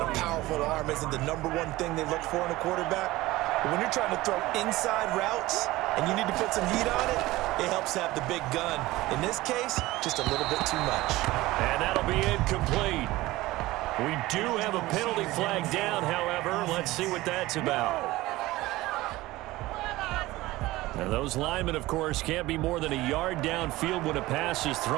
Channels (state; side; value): quieter; left; 18.5 dB